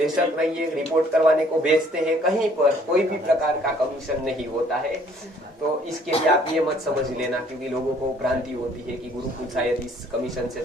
रहिए, रिपोर्ट करवाने को भेजते हैं, कहीं पर कोई भी प्रकार का कमीशन नहीं होता है। तो इसके लिए आप ये मत समझ लेना, क्योंकि लोगों को भ्रांति होती है कि गुरुकुल शायद इस कमीशन से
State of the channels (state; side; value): normal; both; correlation 0.60